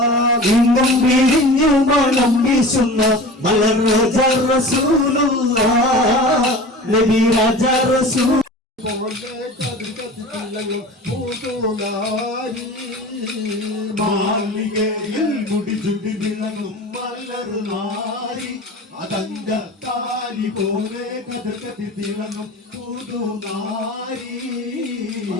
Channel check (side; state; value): both; normal; correlation 0.36